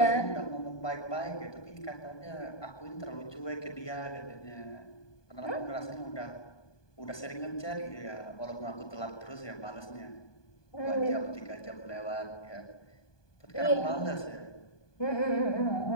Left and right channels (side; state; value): right; late; 1.2 ms